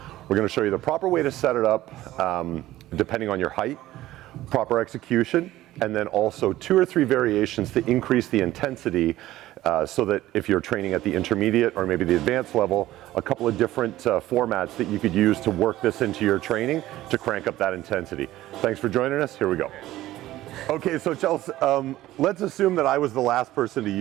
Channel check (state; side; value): quieter; left; 15.4 dB